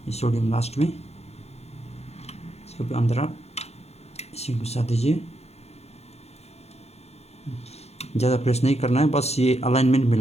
ये सोडियम लास्ट में, इसको भी अंदर आप इसे घुसा दीजिए। ज़्यादा प्रेस नहीं करना है, बस ये अलाइनमेंट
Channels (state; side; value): late; right; 0.31 ms